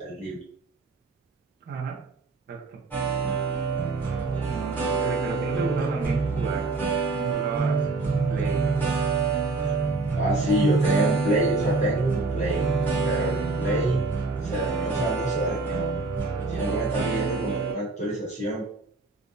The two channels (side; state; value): left; quieter; 3.2 dB